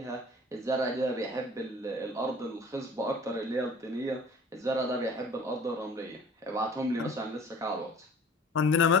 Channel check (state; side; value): normal; both; correlation 0.47